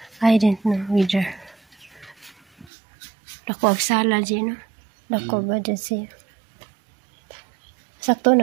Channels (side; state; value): left; drops out; at 2.7 s